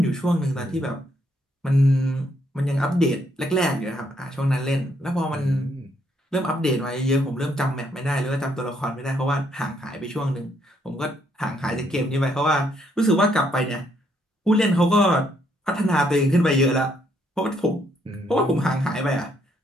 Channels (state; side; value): normal; both; correlation 0.72